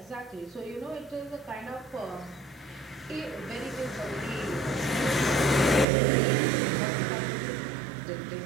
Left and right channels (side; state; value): left; drops out; at 5.9 s